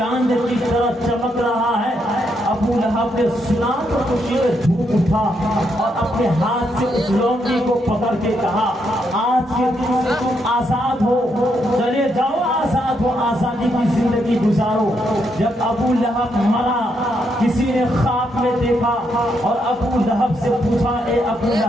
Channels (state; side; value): normal; both; correlation 0.78